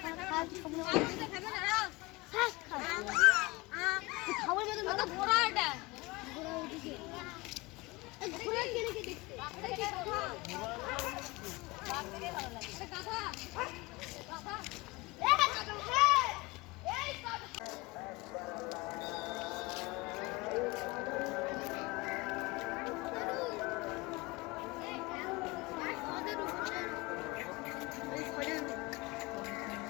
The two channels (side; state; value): right; quieter; 23.3 dB